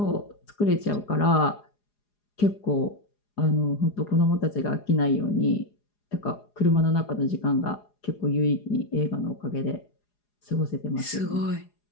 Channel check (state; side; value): late; right; 4.9 ms